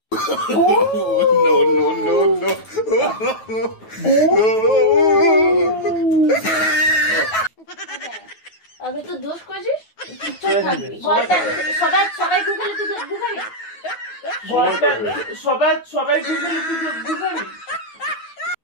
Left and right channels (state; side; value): late; right; 9.3 ms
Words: No, no, no, no. আমি তো দোষ করছিস, সবাই সবাই গুগলে তুই গুগলে সবাই গুগলে তুই গুগলে।